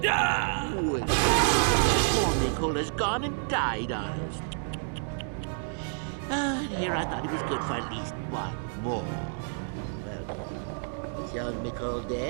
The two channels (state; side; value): silent; left; 57 dB below the other